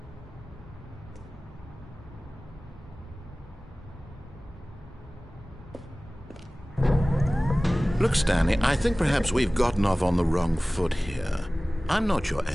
Look, Stanley, I think perhaps we've gotten off on the wrong foot here. I'm not your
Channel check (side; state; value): both; normal; correlation 0.98